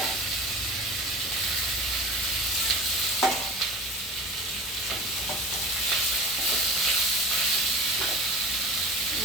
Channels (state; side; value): normal; both; correlation 0.36